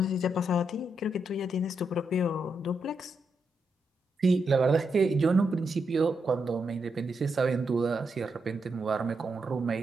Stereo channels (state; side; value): normal; both; correlation 0.83